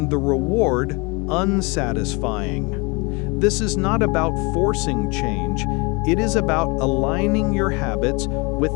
the reward unsatisfying. This is not about forcing change. It is about aligning your habits with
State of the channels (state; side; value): quieter; right; 28.3 dB